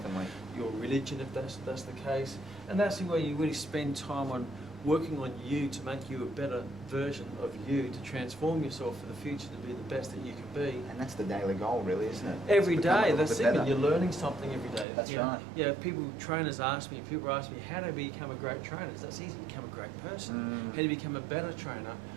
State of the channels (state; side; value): drops out; left; at 14.9 s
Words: your religion if that's the case. And that's where you really spend time on working on you to make you a better version of you, to transform yourself for the future to be the best that you can be. And that's the daily goal, really, isn't it? Every To become a day, little that's bit it. better. You're learning something every day. That's You know, right. Yeah, trainers ask me, people ask me, how do I become a great trainer? That's easy, become a great person. How do you become a better trainer